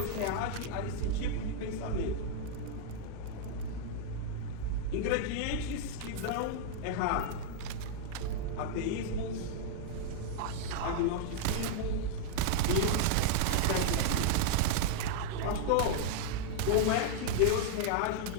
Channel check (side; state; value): both; different; correlation -0.01